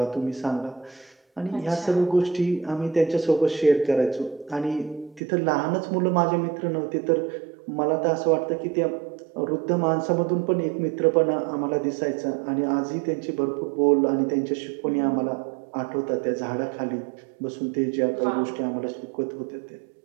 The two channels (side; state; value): left; drops out; at 5.2 s